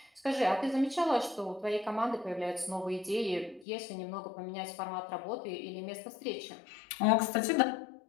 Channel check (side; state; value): right; drops out; at 3.7 s